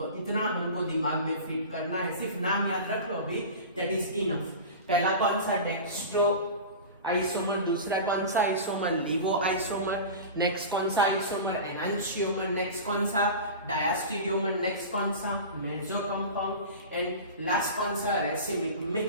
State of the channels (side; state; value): both; inverted; correlation -0.31